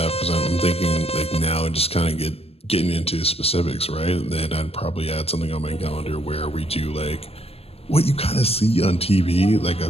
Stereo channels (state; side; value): late; right; 0.29 ms